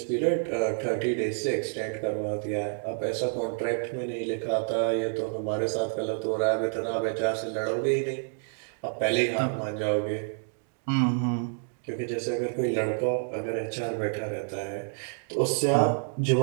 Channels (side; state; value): left; silent; digital silence